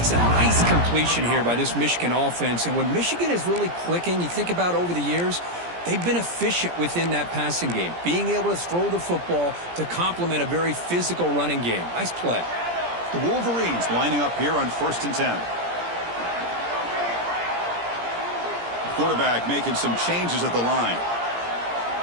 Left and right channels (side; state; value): left; late; 17 ms